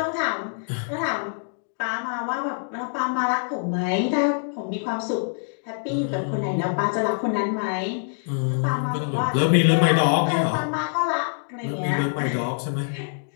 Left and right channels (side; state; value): right; silent; digital silence